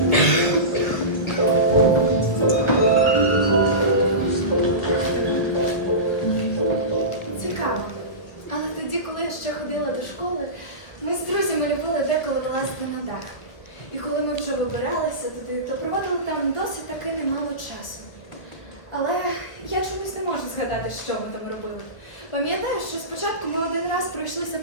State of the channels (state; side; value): late; right; 1.6 ms